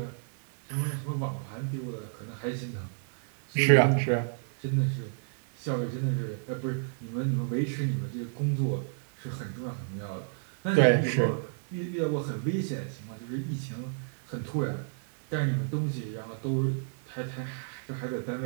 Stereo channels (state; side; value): silent; left; digital silence